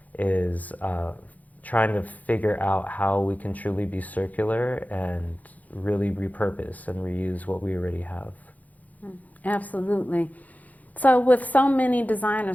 is trying to figure out how we can truly be circular and really repurpose and reuse what we already have. Absolutely. So with so many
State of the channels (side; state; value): right; late; 0.078 ms